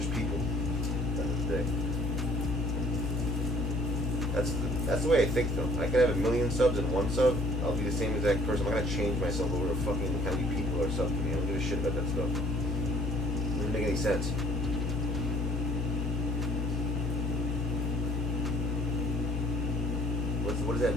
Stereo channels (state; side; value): normal; both; correlation 0.56